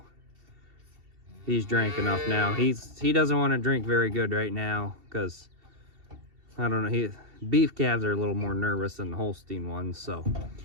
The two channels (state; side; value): late; left; 2.7 ms